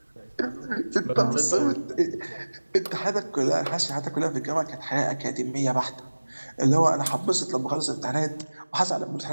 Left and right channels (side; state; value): both; inverted; correlation -1.00